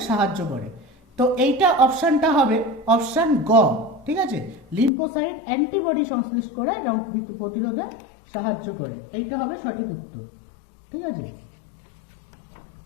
সাহায্য করে। তো এইটা অপশানটা হবে অপশান গ, ঠিক আছে? লিম্ফোসাইট অ্যান্টিবডি সংশ্লেষ করে রোগ প্রতিরোধে সাহায্য করে, এইটা হবে সঠিক উত্তর, ঠিক আছে?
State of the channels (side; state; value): right; drops out; at 4.9 s